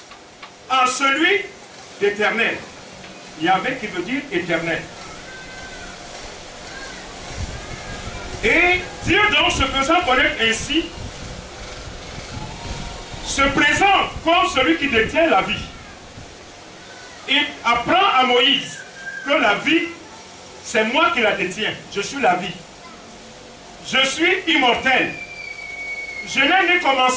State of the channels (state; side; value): identical; both; correlation 1.00